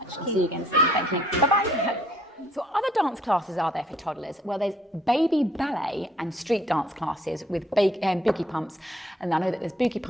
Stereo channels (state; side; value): normal; both; correlation 0.63